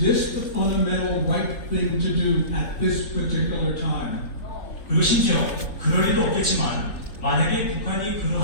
the fundamental right thing to do at this particular time? 그리고 심지어 그럴 일도 없겠지만 만약에 북한이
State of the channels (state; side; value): late; right; 3.3 ms